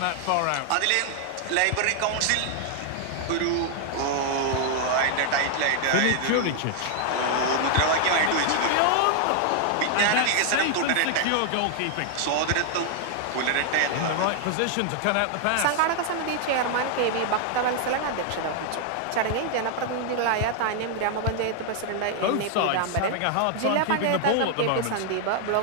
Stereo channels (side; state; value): both; different; correlation 0.00